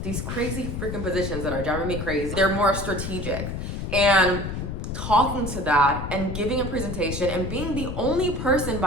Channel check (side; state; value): left; noise; rumble, 5 dB below the sound